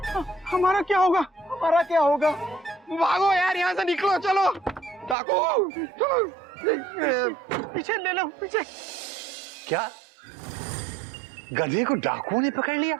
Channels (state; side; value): drops out; left; at 5.2 s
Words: हमारा क्या होगा? हमारा क्या होगा? भागो यार, यहाँ से निकलो, चलो डाकू चलो। पीछे ले लो, पीछे। क्या गधे को डाकुओं ने पकड़ लिया?